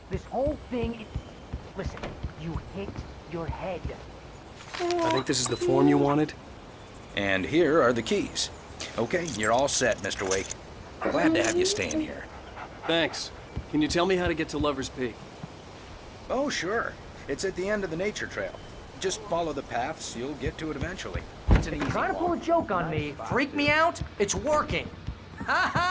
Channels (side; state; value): both; identical; correlation 1.00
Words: this whole thing is... Listen, you hit your head. I think this is the form you wanted. And here are the keys. Okay, you're all set, Mr. Wake. Glad to have you staying here. Thanks. Can you tell me how to get to Lover's Peak? Oh, sure. It's at the end of the nature trail. Just follow the paths, you'll get to it eventually. If you're trying to pull a joke on me, freak me out, it's working. Ha